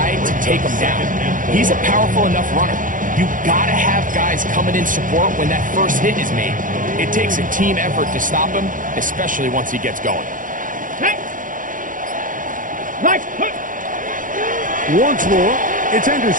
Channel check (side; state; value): left; late; 0.39 ms